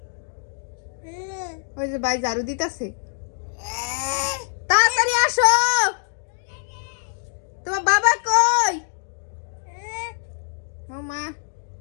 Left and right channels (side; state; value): right; silent; digital silence